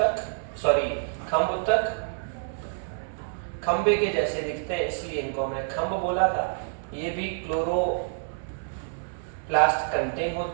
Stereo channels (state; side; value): silent; left; 60 dB below the other